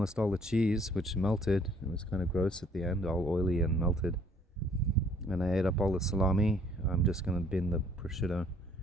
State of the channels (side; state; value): both; normal; correlation 0.60